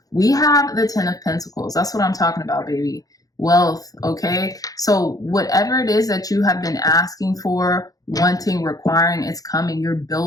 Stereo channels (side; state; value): right; late; 0.17 ms